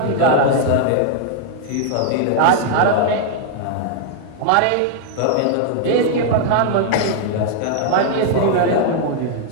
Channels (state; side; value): different; both; correlation 0.00